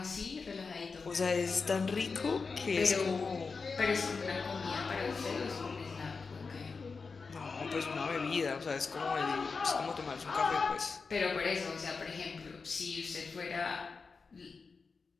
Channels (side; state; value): right; quieter; 4.7 dB